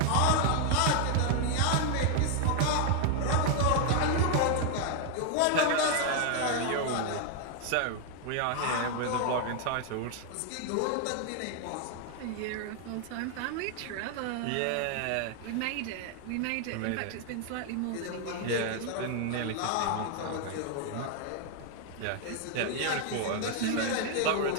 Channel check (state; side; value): different; both; correlation 0.00